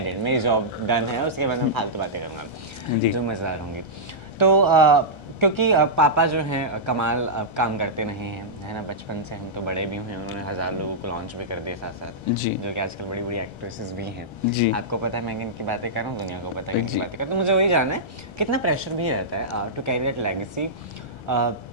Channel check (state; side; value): late; right; 1.3 ms